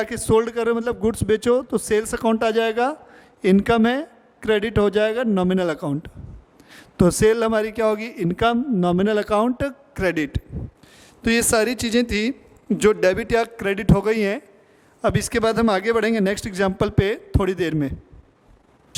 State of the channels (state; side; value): identical; both; correlation 1.00